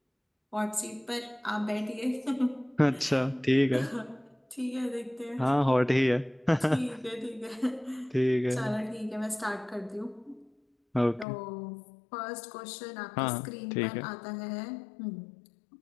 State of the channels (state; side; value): drops out; right; at 11.2 s